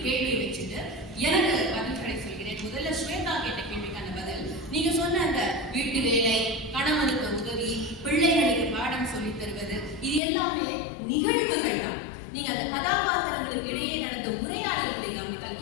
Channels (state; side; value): drops out; right; at 10.2 s